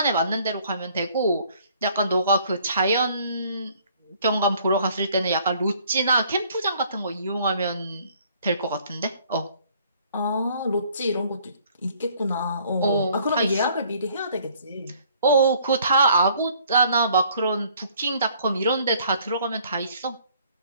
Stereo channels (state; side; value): inverted; both; correlation -0.60